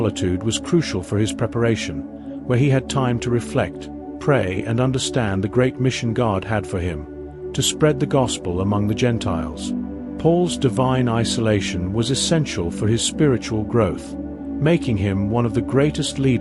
was crucial for his preparation, where he had time to reflect, pray, and understand the great mission God had for him, to spread the gospel among the Gentiles. Paul's divine isolation was essential for his spiritual growth, making him one of the greatest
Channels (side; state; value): both; identical; correlation 1.00